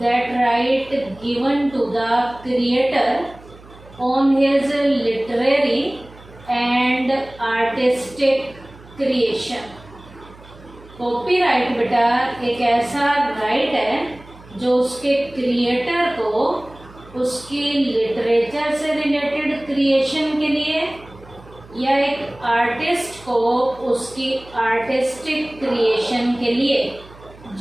that right given to the creator on his literary and artistic creation. Copyright बेटा एक ऐसा राइट है जो उसके क्रिएटर को उसकी लिटरेचर से रिलेटेड क्रिएशन के लिए या एक आर्टिस्ट को उसकी आर्टिस्टिक क्रिएशन के लिए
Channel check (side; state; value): right; noise; hum, 22 dB below the sound